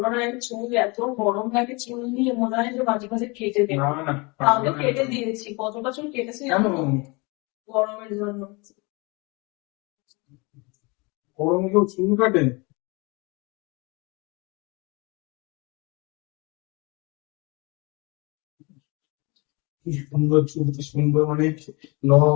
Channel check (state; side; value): quieter; right; 27.7 dB